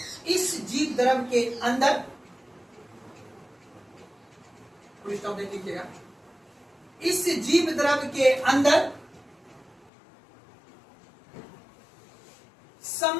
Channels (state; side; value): drops out; right; at 9.9 s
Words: इस जीव द्रव्य के अंदर, स्टॉप देख लीजिएगा, इस जीव द्रव्य के अंदर